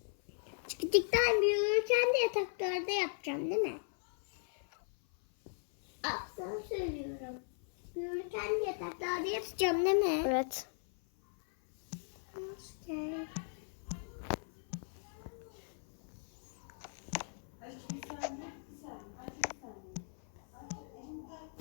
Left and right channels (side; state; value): right; silent; 53 dB below the other